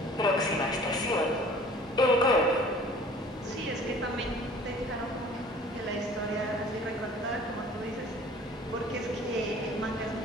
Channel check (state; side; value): normal; both; correlation 0.49